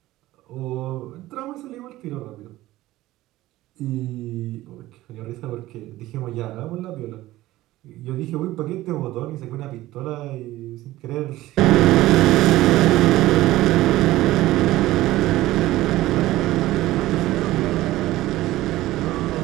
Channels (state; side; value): quieter; left; 16.5 dB